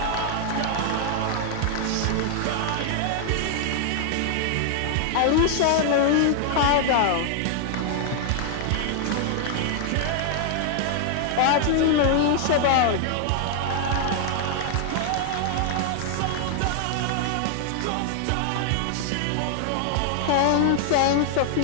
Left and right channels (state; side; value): different; both; correlation 0.00